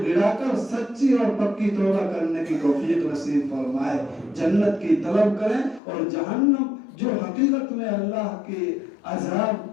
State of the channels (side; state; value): right; drops out; at 5.8 s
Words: گڑا کر سچی اور پکی توبہ کرنے کی توفیق نصیب فرمائے، جنت کی طلب کریں، اور جہنم جو حقیقت میں اللہ کے عذاب